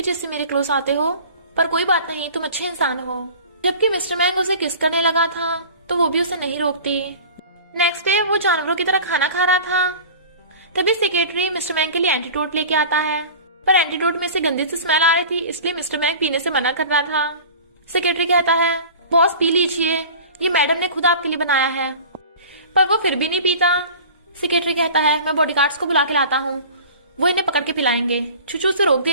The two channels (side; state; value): both; inverted; correlation -0.40